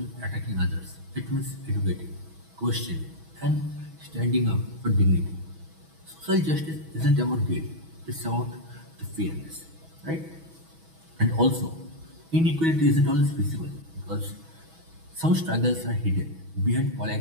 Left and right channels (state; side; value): late; left; 6.2 ms